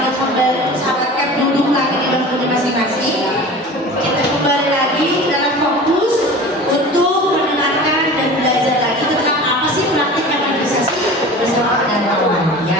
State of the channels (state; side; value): normal; both; correlation 0.37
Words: Cap duduk lagi di bangkunya masing-masing. Kita kembali lagi dalam fokus untuk mendengarkan dan belajar lagi tentang apa sih praktik evangelisasi bersama dan kawan.